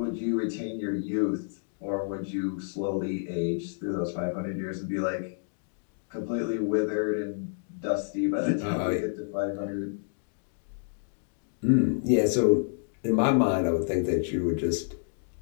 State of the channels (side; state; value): right; silent; digital silence